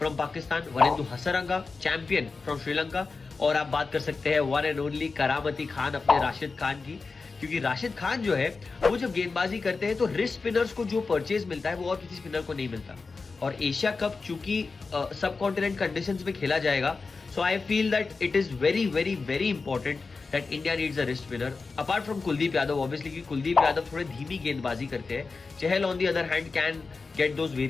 Pakistan, Wanindu Hasaranga champion from Sri Lanka, और आप बात कर सकते हैं वन एंड ओनली करामती खान, अपने राशिद खान की। क्योंकि राशिद खान जो है वो जब गेंदबाजी करते हैं तो रिस्ट स्पिनर्स को जो परचेज मिलता है वो और किसी स्पिनर को नहीं मिलता। और एशिया कप चूंकि सब कॉन्टिनेंट कंडीशंस में खेला जाएगा, so I feel that it is very very very important that India needs a wrist spinner apart from Kuldeep Yadav obviously, क्योंकि कुलदीप यादव थोड़े धीमी गेंदबाजी करते हैं। Chahal on the other hand can get those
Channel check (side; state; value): right; quieter; 4.3 dB